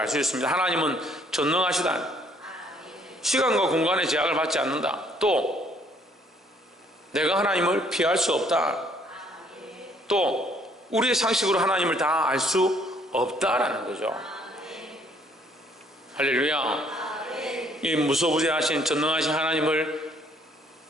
수 있습니다. 하나님은 전능하시다. 시간과 공간의 제약을 받지 않는다. 또 내가 하나님을 피할 수 없다. 또 우리의 상식으로 하나님을 다 알 수 없다라는 거죠. 할렐루야. 이 무소부재하신 전능하신 하나님을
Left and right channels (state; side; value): normal; both; correlation 0.63